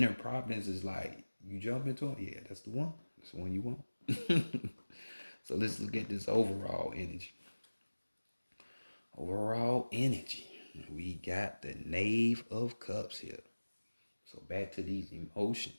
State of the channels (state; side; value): inverted; both; correlation -1.00